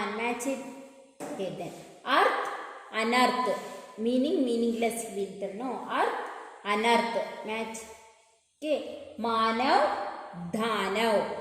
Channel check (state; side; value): identical; both; correlation 1.00